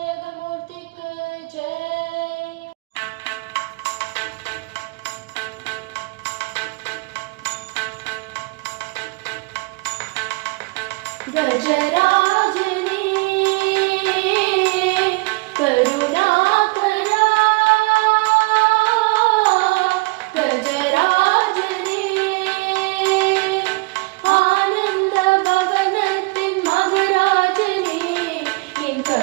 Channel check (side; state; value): left; quieter; 25.9 dB